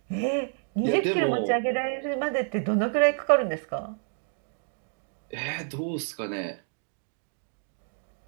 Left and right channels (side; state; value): left; silent; 59 dB below the other